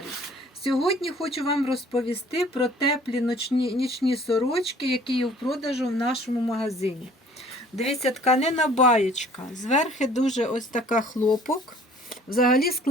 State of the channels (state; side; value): normal; both; correlation 0.53